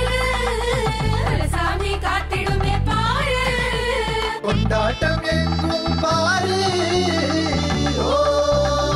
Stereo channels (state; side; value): identical; both; correlation 1.00